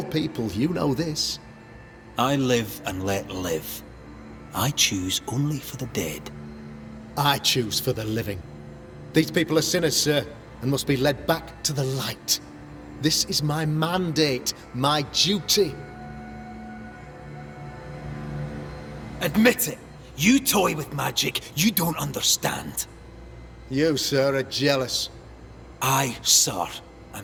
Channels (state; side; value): identical; both; correlation 1.00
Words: people, you know this. I live and let live. I choose only for the dead. I choose for the living. These people are sinners, sir, and must be led back to the light. This is my mandate, my duty. Admit it. You toy with magic you don't understand. You, sir, are jealous. I, sir,